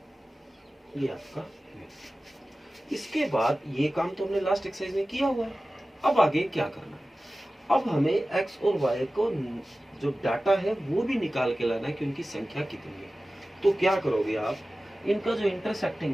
ये आपका है। इसके बाद ये काम तो हमने लास्ट एक्सरसाइज में किया हुआ है। अब आगे क्या करना है, अब हमें x और y को जो डाटा है वो भी निकाल के लाना है कि उनकी संख्या कितनी है। तो क्या करोगे आप, इनका जो इंटरसेक्टिंग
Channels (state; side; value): normal; both; correlation 0.96